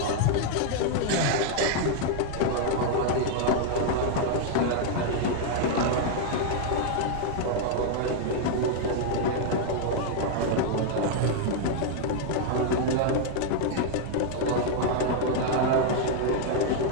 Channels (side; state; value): both; different; correlation 0.00